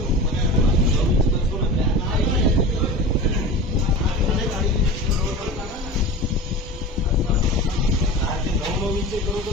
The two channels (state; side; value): normal; both; correlation 0.32